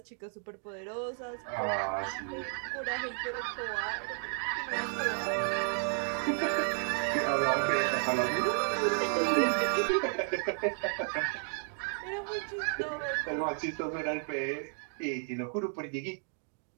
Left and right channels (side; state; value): left; silent; 56 dB below the other